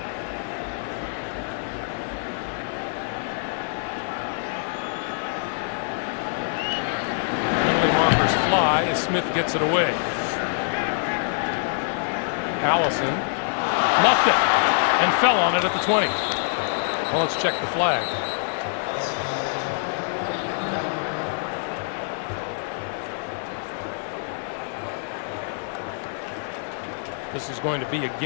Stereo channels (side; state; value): right; silent; digital silence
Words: Penalty markers fly as Smith gets it away. Allison muffed it and fell on it at the 20. Well, let's check the flag. This is going to be